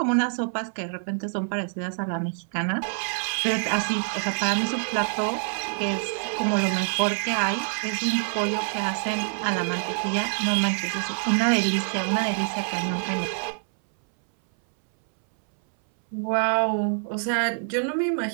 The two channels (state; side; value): silent; left; 61 dB below the other